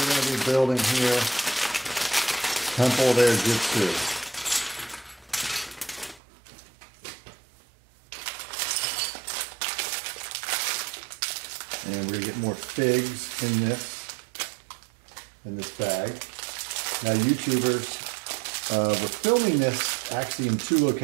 going to be building here. Temple of Airjitzu. And we're going to get more figs in this bag. Now YouTubers, we're filming this actually in 2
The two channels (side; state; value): left; drops out; at 6.2 s